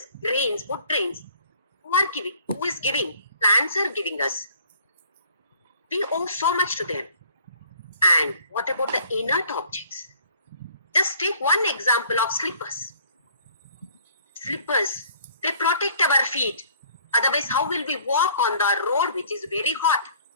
grains, food grains. Who are giving? Who is giving? Plants are giving us. We owe so much to them. And what about the inert objects? Just take one example of slippers. Slippers, they protect our feet. Otherwise, how will we walk on the road which is very hot?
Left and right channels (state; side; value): inverted; both; correlation -0.56